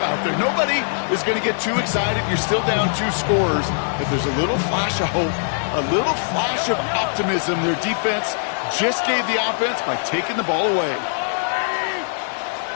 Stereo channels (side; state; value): right; silent; 61 dB below the other